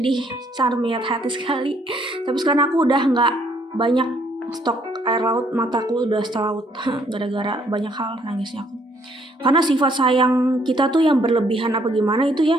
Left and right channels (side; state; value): both; normal; correlation 0.67